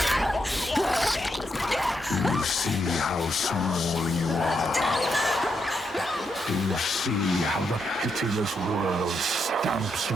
Do you see how small you are? Do you see how the pitiless world stamps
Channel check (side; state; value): both; normal; correlation 0.80